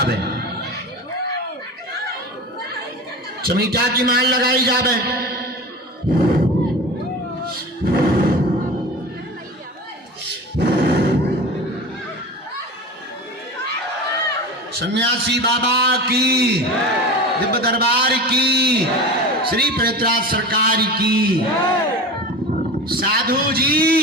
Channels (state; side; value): normal; both; correlation 0.32